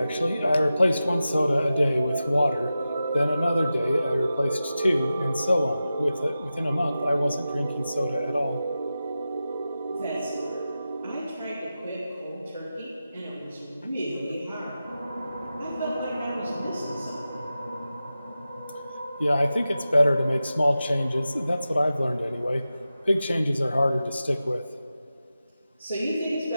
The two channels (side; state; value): both; inverted; correlation -0.93